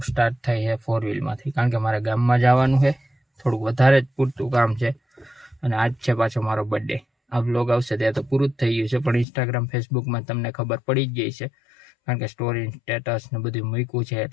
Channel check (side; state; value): right; drops out; at 9.2 s